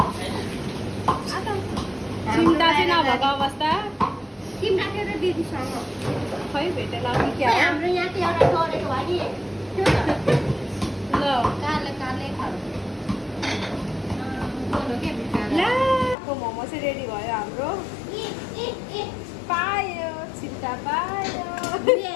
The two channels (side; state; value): right; drops out; at 16.2 s